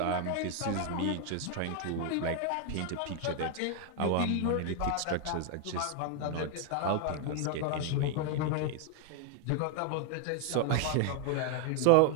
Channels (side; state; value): both; different; correlation 0.00